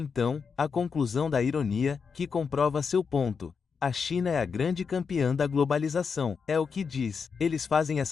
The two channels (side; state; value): right; quieter; 5.8 dB